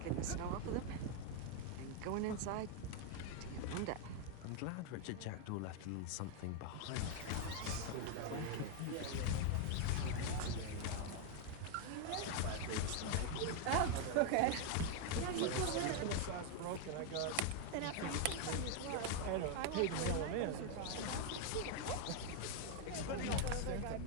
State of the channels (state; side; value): different; both; correlation 0.00